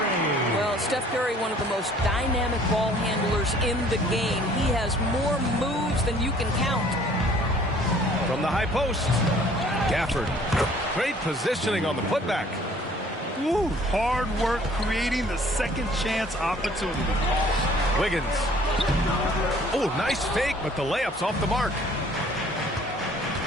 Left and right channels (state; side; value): normal; both; correlation 0.55